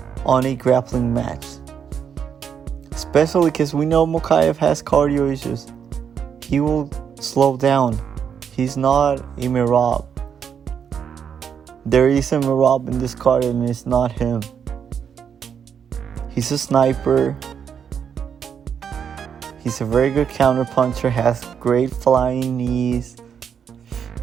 on a grappling match. Especially because we know Mokaev has cardio issues. He will slow down. He's not a Mirab. There is a Mirab in this card and it's not him. He's a sniper. He's a very good counter puncher, has great flying knees.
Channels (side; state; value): left; quieter; 7.6 dB